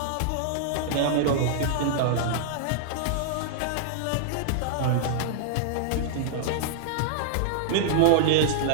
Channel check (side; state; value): both; different; correlation -0.01